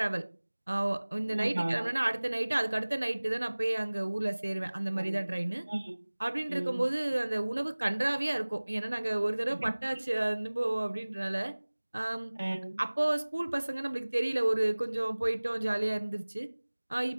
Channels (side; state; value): both; inverted; correlation -1.00